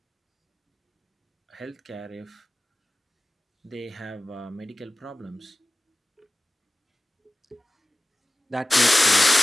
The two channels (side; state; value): both; normal; correlation 0.96